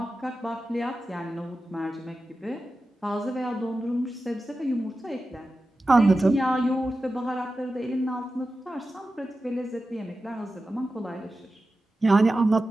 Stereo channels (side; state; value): both; normal; correlation 0.93